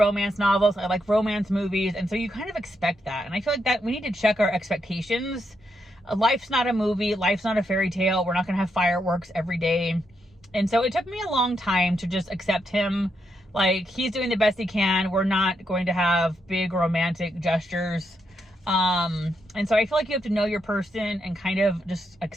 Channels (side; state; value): both; normal; correlation 0.81